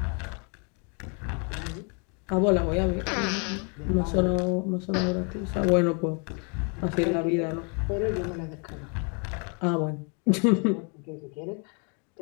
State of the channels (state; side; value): quieter; right; 36.8 dB